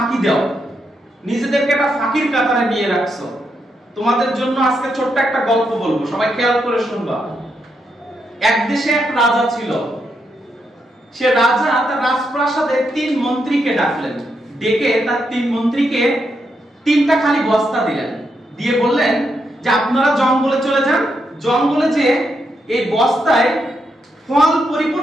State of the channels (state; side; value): normal; both; correlation 0.81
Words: দাও, নিজেদেরকে একটা ফাঁকির কাতারে নিয়ে রাখছো। তোমাদের জন্য আজকে ছোট্ট একটা গল্প বলবো, সবাই খেয়াল করে শুনবা। এক দেশে এক রাজা ছিল। সে রাজা তার রাজপ্রাসাদে 3 মন্ত্রীকে ডাকলেন, ডেকে তার 3 মন্ত্রীকে 3টা খালি বস্তা দিলেন, দিয়ে বললেন যে আপনারা জঙ্গলে চলে যান, জঙ্গলে যে এই বস্তায় ফল